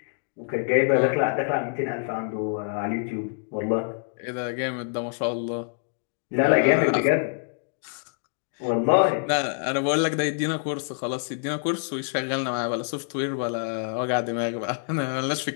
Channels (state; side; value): silent; right; digital silence